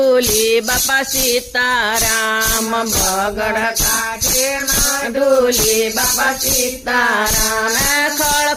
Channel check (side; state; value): both; identical; correlation 1.00